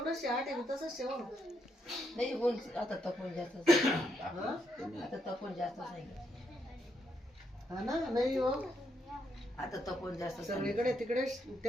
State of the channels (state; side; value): normal; both; correlation 0.78